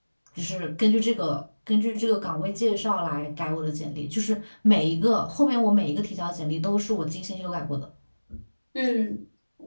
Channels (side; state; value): both; inverted; correlation -1.00